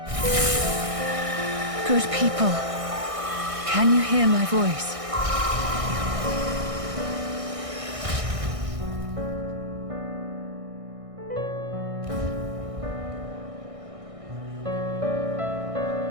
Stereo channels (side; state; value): left; late; 1.6 ms